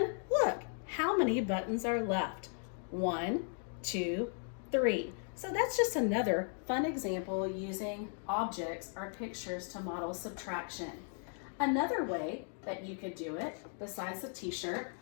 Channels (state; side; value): silent; right; 53 dB below the other